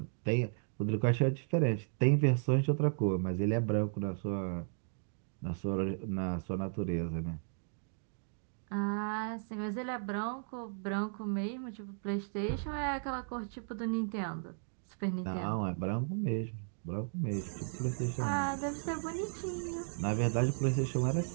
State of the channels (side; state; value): left; silent; digital silence